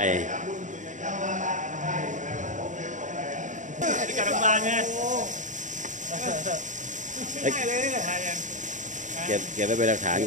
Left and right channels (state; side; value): late; left; 0.36 ms